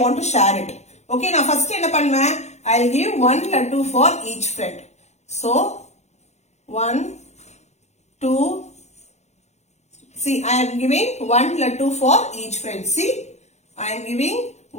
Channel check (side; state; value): right; late; 0.33 ms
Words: want to share it. Okay, now first என்ன பண்ணுவேன்? I'll give 1 laddu for each friend. So, 1, 2, see, I am giving 1 laddu for each friend. See, I am giving